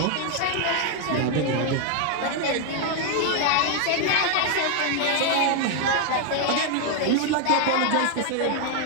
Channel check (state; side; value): different; both; correlation 0.00